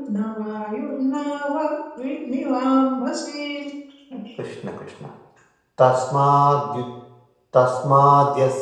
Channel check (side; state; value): both; identical; correlation 1.00